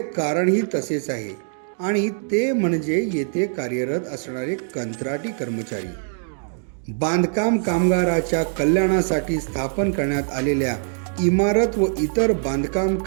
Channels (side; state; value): left; silent; digital silence